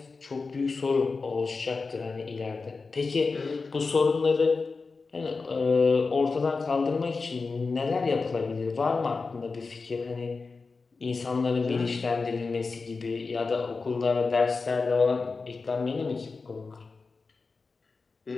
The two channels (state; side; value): quieter; right; 4.3 dB